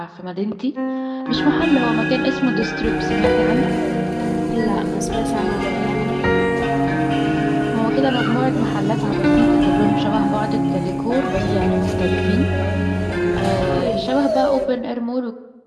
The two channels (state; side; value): identical; both; correlation 1.00